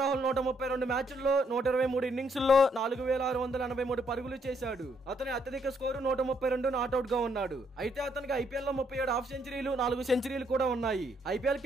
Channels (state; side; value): normal; both; correlation 0.72